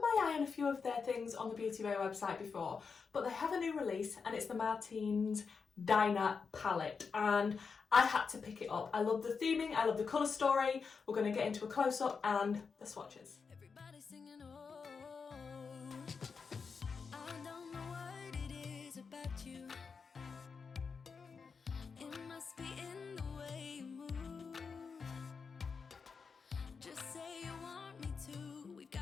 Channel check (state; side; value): quieter; right; 5.4 dB